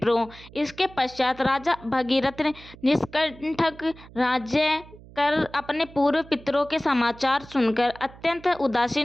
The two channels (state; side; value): noise; right; hum, 20 dB below the sound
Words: इसके पश्चात राजा भगीरथ निष्कंटक राज्य कर अपने पूर्व पितरों के समाचार सुनकर अत्यंत